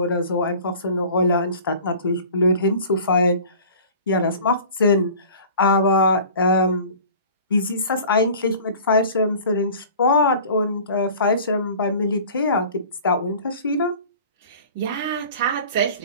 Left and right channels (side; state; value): both; inverted; correlation -0.44